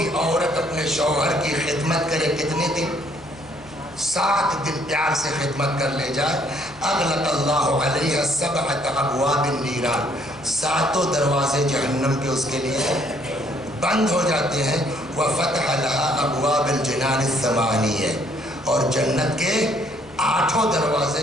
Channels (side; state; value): left; noise; hum, 24 dB below the sound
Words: عورت اپنے شوہر کی خدمت کرے کتنے دن 7 دن پیار سے خدمت کر لے جائے اغلق اللہ علیہ 7 ابواب النیران 7 دروازے جہنم کے اس کے لیے بند ہو جاتے ہیں وفتح لها ابواب الجنان 8 اور جنت کے 8 دروازے